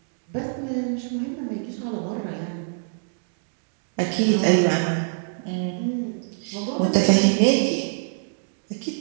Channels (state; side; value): silent; left; digital silence